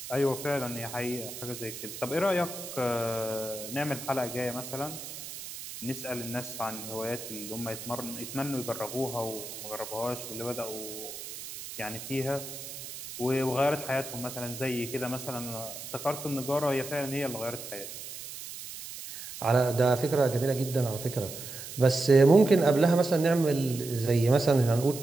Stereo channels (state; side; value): noise; right; hiss, 11 dB below the sound